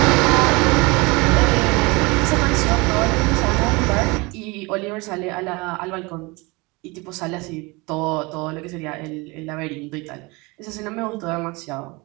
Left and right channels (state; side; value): quieter; left; 25.5 dB